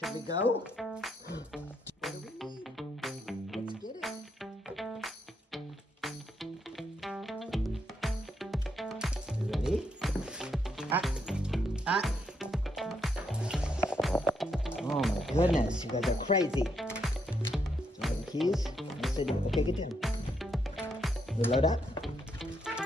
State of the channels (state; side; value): normal; both; correlation 0.77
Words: we go? What do we need? Let's get it. You ready? Oh my goodness, you guys are crazy. Do you have the keys? Yes, I do. Okay, get in. You load up?